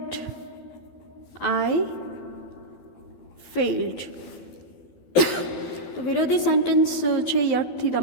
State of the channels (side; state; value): right; late; 12 ms